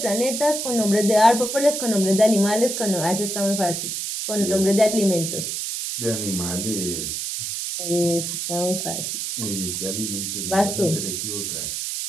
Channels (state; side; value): noise; right; hiss, 3 dB below the sound